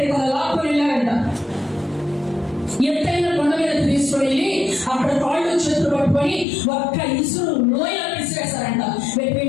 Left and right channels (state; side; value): drops out; right; at 6.5 s